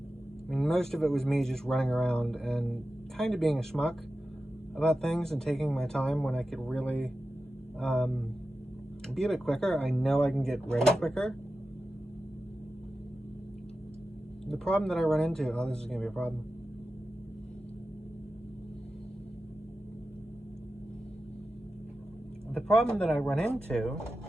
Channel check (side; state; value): both; normal; correlation 0.93